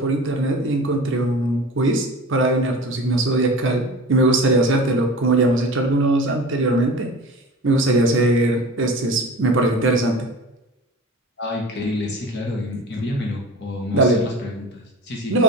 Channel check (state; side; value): normal; both; correlation 0.36